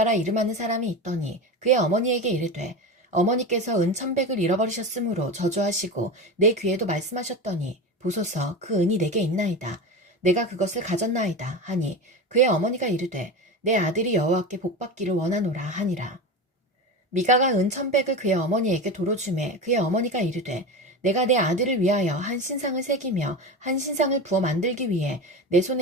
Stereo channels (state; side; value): normal; both; correlation 0.25